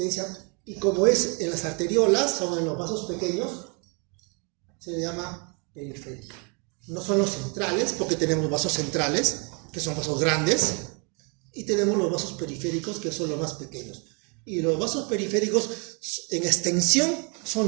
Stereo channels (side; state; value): left; quieter; 34.5 dB